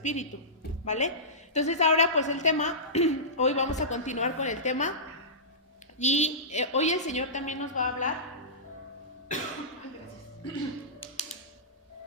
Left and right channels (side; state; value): both; normal; correlation -0.19